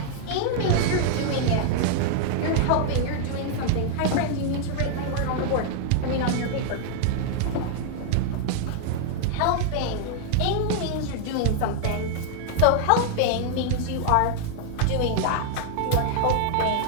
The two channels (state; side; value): different; both; correlation 0.00